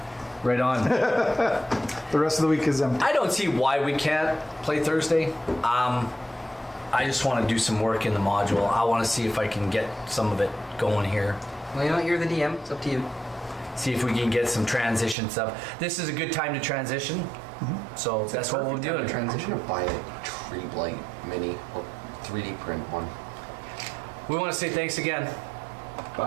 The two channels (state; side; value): drops out; left; at 15.2 s